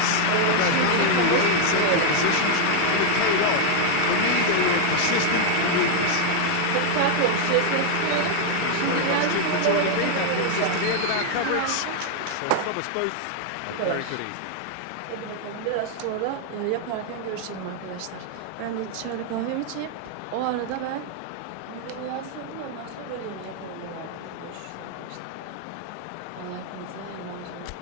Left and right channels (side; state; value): both; different; correlation 0.00